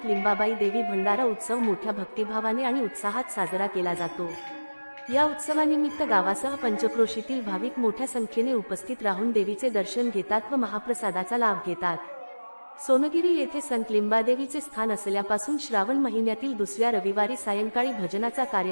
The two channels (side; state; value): both; inverted; correlation -1.00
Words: लिंबाबाई देवी भंडारा उत्सव मोठ्या भक्तिभावाने आणि उत्साहात साजरा केला जातो। या उत्सवानिमित्त गावासह पंचक्रोशीतील भाविक मोठ्या संख्येने उपस्थित राहून देवीचे दर्शन घेतात व महाप्रसादाचा लाभ घेतात। सोनगिरी येथे संत लिंबादेवीचे स्थान असल्यापासून श्रावण महिन्यातील दुसऱ्या रविवारी सायंकाळी भजनाचा